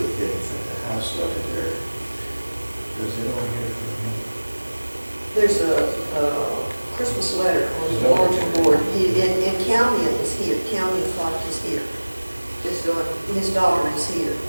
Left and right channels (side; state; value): both; inverted; correlation -1.00